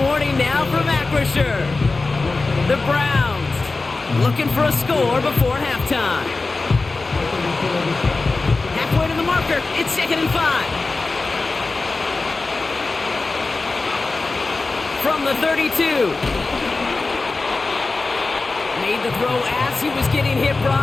warning now from Acrisure. The Browns looking for a score before halftime. Halfway to the marker. It's 2nd and 5. From the 32. Made the throw as he was getting hit,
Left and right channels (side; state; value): right; quieter; 3.6 dB